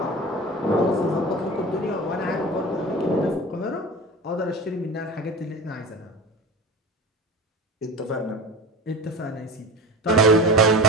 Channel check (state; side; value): normal; both; correlation 0.31